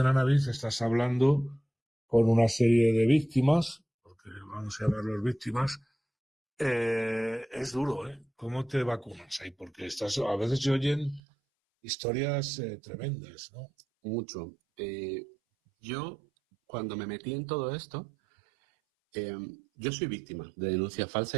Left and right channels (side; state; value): left; drops out; at 11.2 s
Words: Anabis, estás hablando con una serie de víctimas, porque vamos a llamarlos víctimas. Es duro, ¿eh? ¿Cómo te vacunas ahí? Porque a veces se oyen historias tremendas, ¿no? Mucho. Yo, cuando me metí en todo esto, yo soy víctima de denuncia